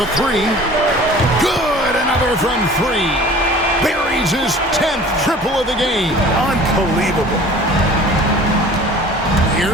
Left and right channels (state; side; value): normal; both; correlation 0.45